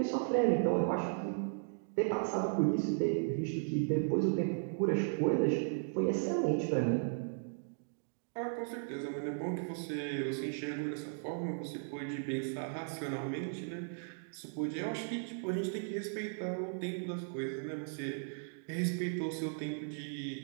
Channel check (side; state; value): left; silent; digital silence